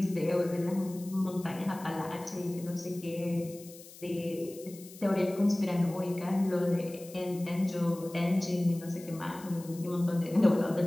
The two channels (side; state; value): left; noise; hiss, 19 dB below the sound